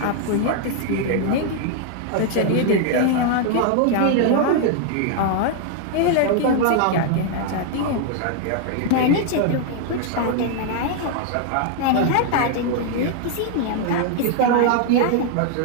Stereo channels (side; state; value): both; different; correlation 0.00